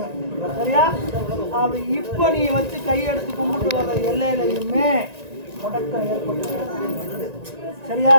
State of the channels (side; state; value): left; late; 1.9 ms